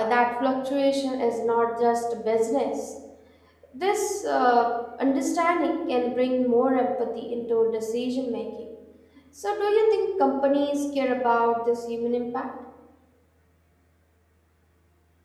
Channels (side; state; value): both; identical; correlation 1.00